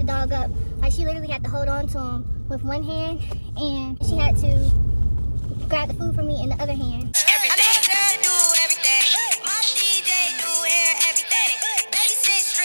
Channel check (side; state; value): both; inverted; correlation -1.00